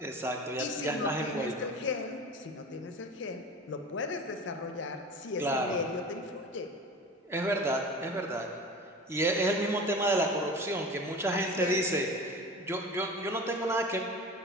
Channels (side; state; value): both; normal; correlation 0.35